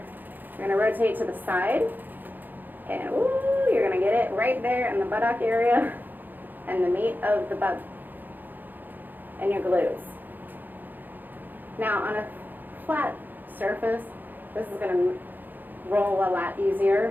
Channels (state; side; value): late; left; 0.088 ms